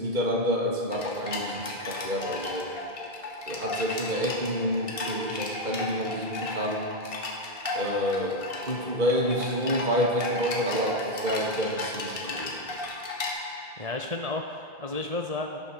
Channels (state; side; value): late; left; 1.6 ms